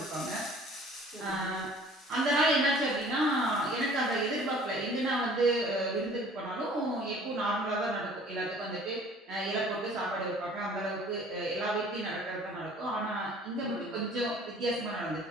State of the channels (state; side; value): normal; both; correlation 0.51